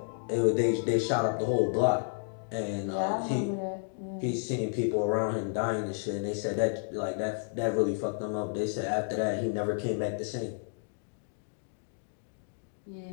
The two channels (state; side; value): silent; right; digital silence